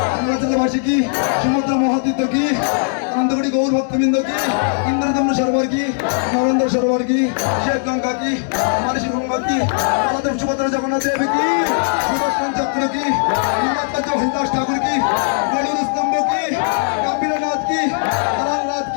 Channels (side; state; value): right; silent; digital silence